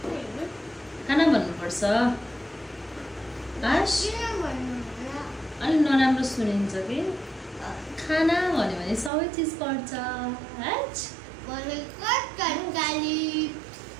खाना भन्नुपर्छ अलि नराम्रो सुनिन्छ कि खाना भन्यो भने सबै चिज पर्छ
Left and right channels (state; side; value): drops out; left; at 9.1 s